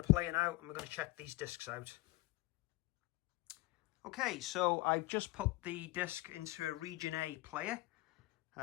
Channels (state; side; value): quieter; right; 19.8 dB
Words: player now and we're going to check these discs out. Okay, so I've just put the disc into a Region A player.